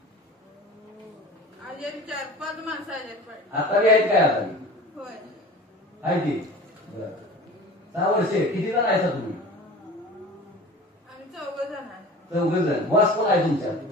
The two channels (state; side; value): normal; both; correlation 0.39